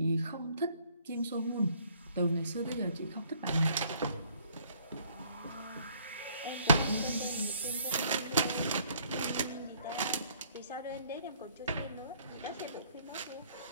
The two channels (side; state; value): both; inverted; correlation -0.62